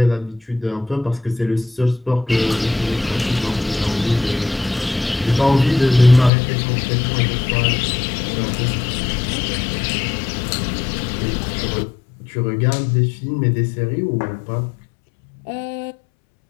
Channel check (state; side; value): drops out; right; at 6.3 s